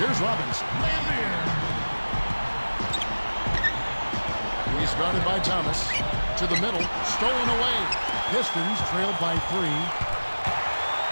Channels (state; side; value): inverted; both; correlation -1.00